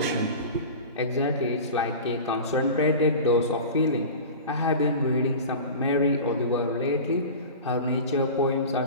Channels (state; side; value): inverted; both; correlation -0.33